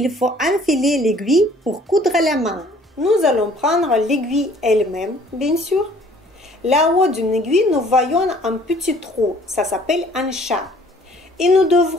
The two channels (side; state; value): both; normal; correlation 0.56